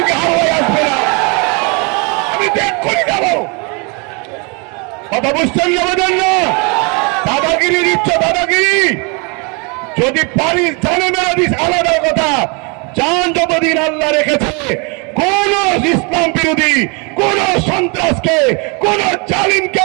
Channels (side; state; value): left; quieter; 32.6 dB